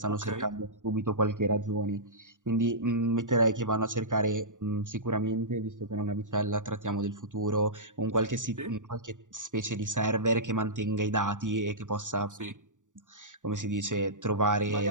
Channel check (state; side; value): late; left; 0.87 ms